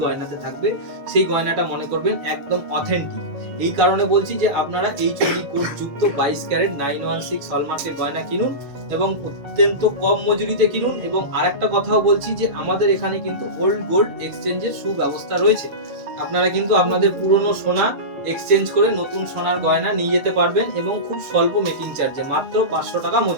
গয়নাতে থাকবে সেই গয়নাটা মনে করবেন একদম অথেন্টিক। এই কারণে বলছি যে আপনারা HUID কোড যুক্ত 22 ক্যারেট 916 হলমার্কের গয়না কিনুন এবং অত্যন্ত কম মজুরিতে কিনুন। এবং আরেকটা কথাও বলছি যে আমাদের এখানে কিন্তু ওল্ড গোল্ড এক্সচেঞ্জের সুব্যবস্থা রয়েছে। আপনারা কিন্তু আপনাদের পুরনো সোনা এক্সচেঞ্জ করে নতুন সোনার গয়না নিয়ে যেতে পারবেন এবং খুব স্বল্প মেকিং চার্জে, মাত্র 500 টাকা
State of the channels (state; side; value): late; left; 7.1 ms